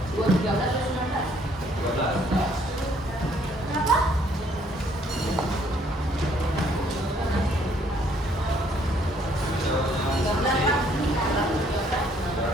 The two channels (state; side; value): normal; both; correlation 0.65